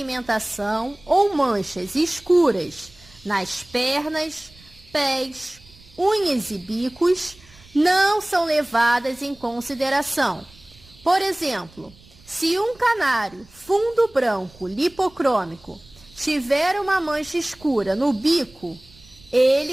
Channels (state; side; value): noise; right; rumble, 26 dB below the sound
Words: ou manchas escuras nas pernas, pés, unhas e bicos não são levadas em consideração. Por exemplo, se um canário fundo branco lipocrômico tiver uma mancha escura no bico,